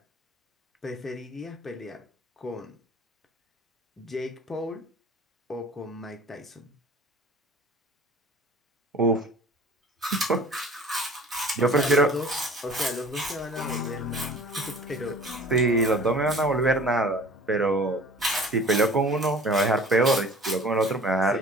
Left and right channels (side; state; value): both; normal; correlation 0.45